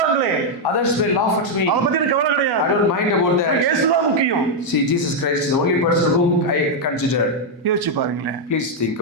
Others will laugh at me. அதை பத்தி எனக்கு கவலை I கிடையாது. don't mind about that. இயேசுதான் முக்கியம். See, Jesus Christ is the only person whom I consider. யோசிச்சு பாருங்களேன். Please think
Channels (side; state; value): both; normal; correlation 0.00